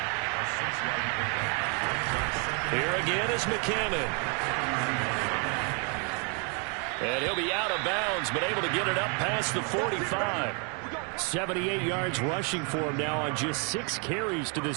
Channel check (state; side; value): quieter; left; 37.2 dB